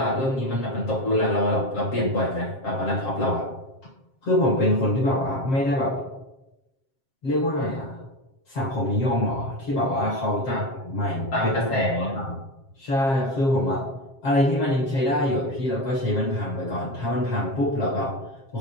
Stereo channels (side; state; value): right; late; 7.5 ms